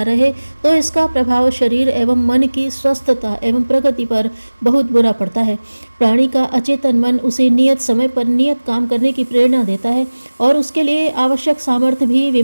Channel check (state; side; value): inverted; both; correlation -1.00